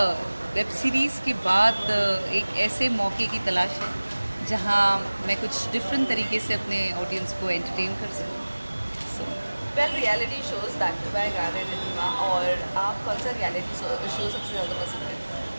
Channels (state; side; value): inverted; both; correlation -1.00